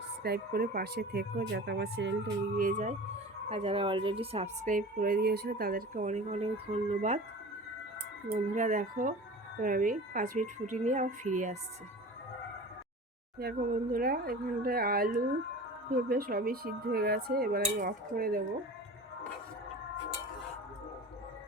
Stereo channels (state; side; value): normal; both; correlation 0.37